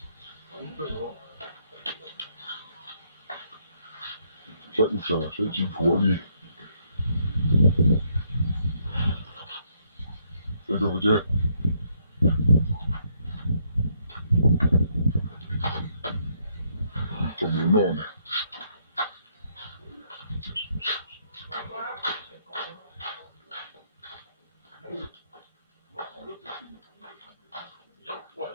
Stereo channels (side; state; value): both; inverted; correlation -0.72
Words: sẽ chỉ thua đi这就不接，怎么弄呢？